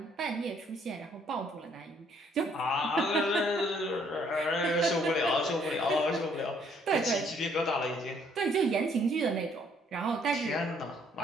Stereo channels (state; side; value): normal; both; correlation 0.65